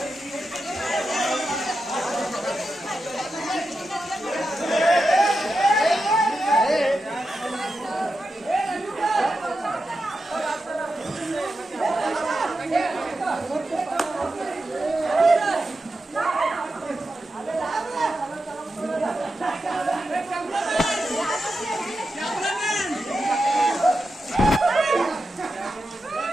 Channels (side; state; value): both; normal; correlation 0.89